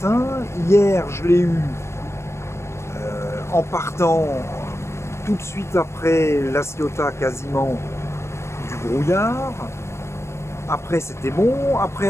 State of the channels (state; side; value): late; right; 0.13 ms